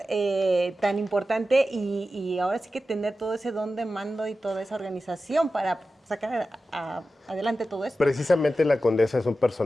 tan importante y ahora sí que tener todo ese don de mando y toda esa organización para sacar adelante todo esto. Precisamente la condesa es un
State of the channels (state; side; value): normal; both; correlation 0.93